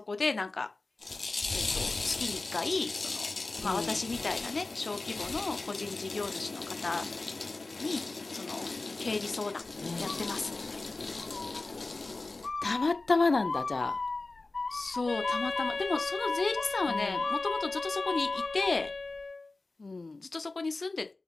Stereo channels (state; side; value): quieter; right; 3.3 dB